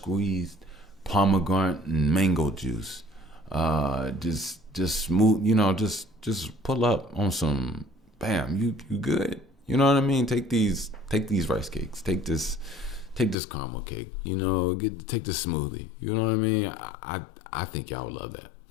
pomegranate and mango juice. Just smooth, just pull up on some, bam, you good. You know what I mean? Take these rice cakes. Take this caramel cake. Take this smoothie. You know what I mean? I think y'all would love that.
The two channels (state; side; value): drops out; right; at 13.4 s